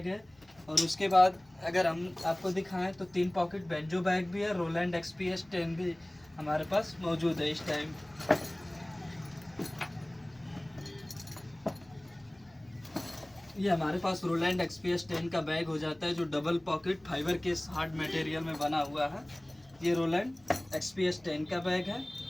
है। और उसके बाद अगर हम आपको दिखाएं तो 3 पॉकेट बेंजो बैग भी है, रोलैंड एक्सपीएस 10 भी हमारे पास मौजूद है इस टाइम। ये हमारे पास रोलैंड एक्सपीएस 10 का बैग हो जाता है, जो डबल पॉकेट फाइबर के हार्ड मटेरियल में बना हुआ है। ये रोलैंड एक्सपीएस 10 का बैग है।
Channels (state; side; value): noise; left; hum, 30 dB below the sound